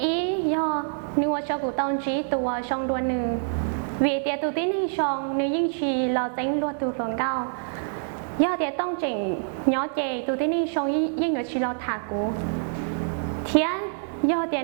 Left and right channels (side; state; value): left; silent; digital silence